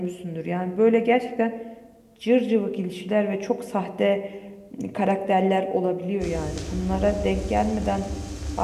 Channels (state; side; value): identical; both; correlation 1.00